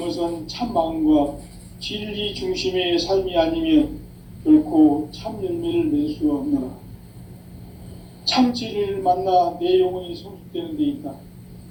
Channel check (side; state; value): both; identical; correlation 1.00